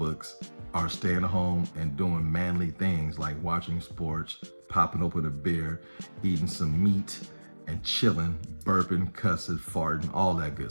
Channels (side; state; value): both; inverted; correlation -1.00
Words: are staying home and doing manly things like watching sports, popping open a beer, eating some meat, and chilling, burping, cussing, farting, all that